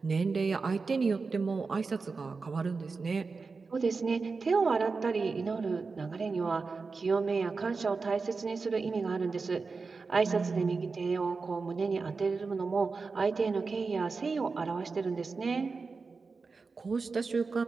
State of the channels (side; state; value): left; quieter; 4.4 dB